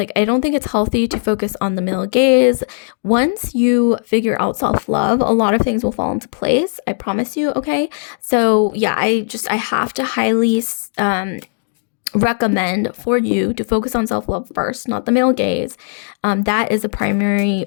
I don't think it's healthy to focus on the male gaze. Once you figure out self-love, a lot of things will fall into place. I promise you, okay? So, yeah, I have to highly recommend for you to focus on self-love first, not the male gaze. That is the primary,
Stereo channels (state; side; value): silent; right; digital silence